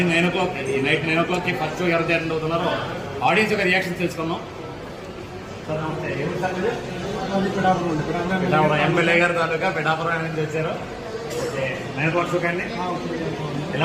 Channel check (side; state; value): both; identical; correlation 1.00